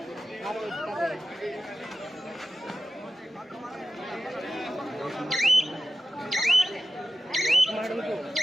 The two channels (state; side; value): normal; both; correlation 0.93